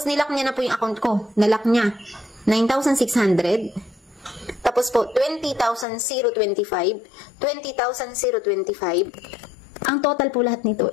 nilak niya na po yung account ko. Nalak niya. 9,600. Tapos po, 20,025. 20,025. Ang total po lahat nito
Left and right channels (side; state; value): right; drops out; at 5.9 s